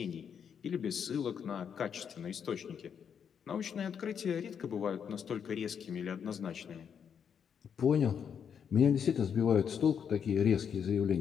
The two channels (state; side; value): quieter; right; 7.6 dB